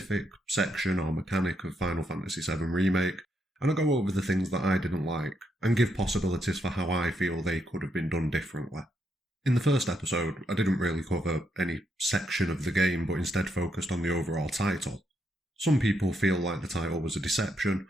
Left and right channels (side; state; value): both; normal; correlation 0.78